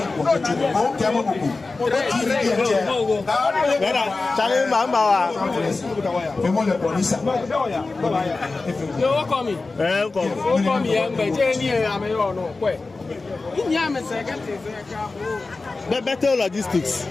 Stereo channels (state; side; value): quieter; right; 3.6 dB